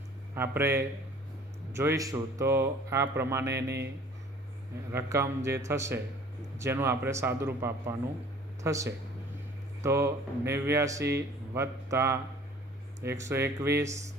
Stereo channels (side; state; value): both; normal; correlation 0.50